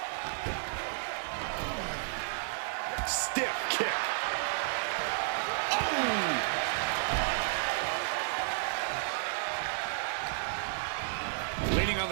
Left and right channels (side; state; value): left; silent; digital silence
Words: Stiff kick. Oh! Leaning on